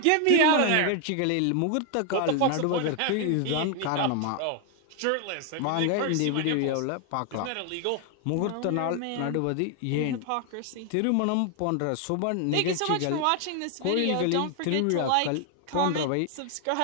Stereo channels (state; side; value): different; both; correlation 0.00